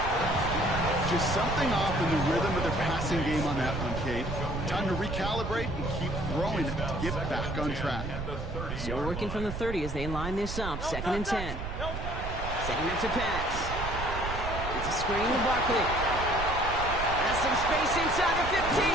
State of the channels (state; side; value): noise; right; rumble, 6 dB below the sound